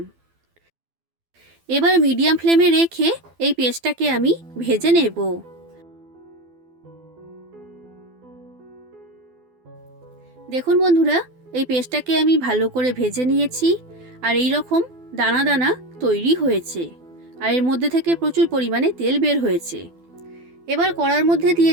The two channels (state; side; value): late; left; 12 ms